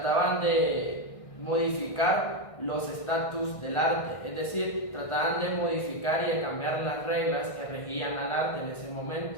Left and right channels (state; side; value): late; right; 1.6 ms